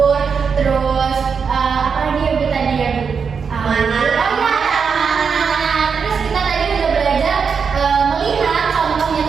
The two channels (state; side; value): quieter; left; 6.0 dB